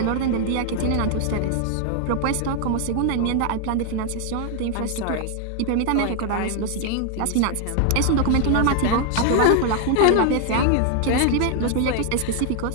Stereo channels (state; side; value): different; both; correlation 0.00